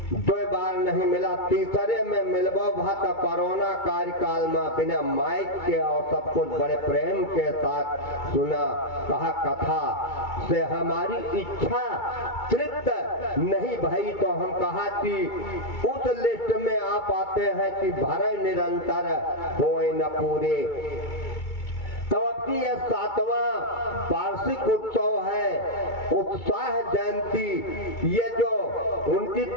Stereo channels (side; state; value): right; late; 2.3 ms